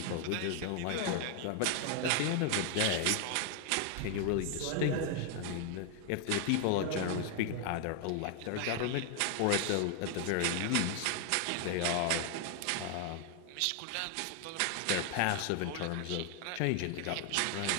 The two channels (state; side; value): different; both; correlation 0.00